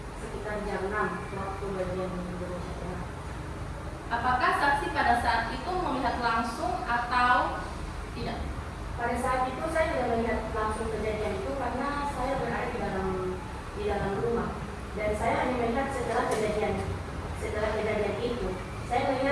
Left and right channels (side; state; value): both; identical; correlation 1.00